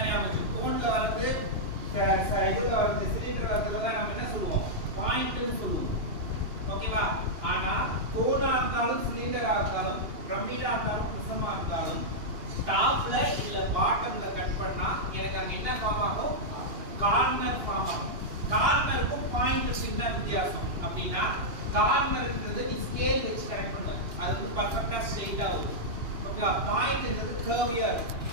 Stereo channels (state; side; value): late; left; 2.8 ms